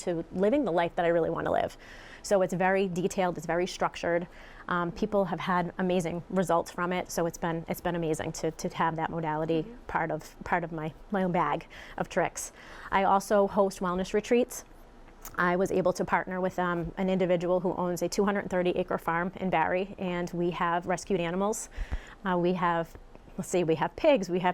living the life that I really want to live? So it's very detailed, it's very structured. People have had amazing results from it, so it's been amazing to have that modality part of my own bag of tricks. I also host wellness retreats. I was able to partner with an individual who owns a 230-acre farm in Barrie, and we have rescued animals. We have let's see, we have pigs, we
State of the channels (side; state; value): both; identical; correlation 1.00